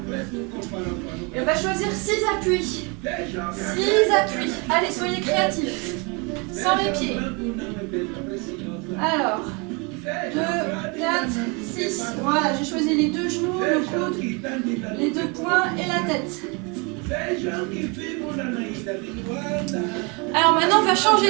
Et on va choisir 6 appuis. 6 appuis. Allez, soyez créatifs. Sans les pieds. Alors, 2, 4, 6. Voilà, j'ai choisi les deux genoux, le coude, les deux poings et la tête. Alors maintenant, on va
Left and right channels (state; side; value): quieter; left; 30.7 dB